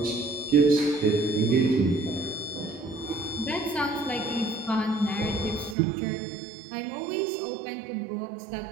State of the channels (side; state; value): left; drops out; at 5.8 s